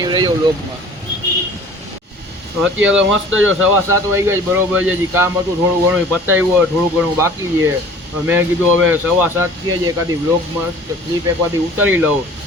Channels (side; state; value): both; normal; correlation 0.46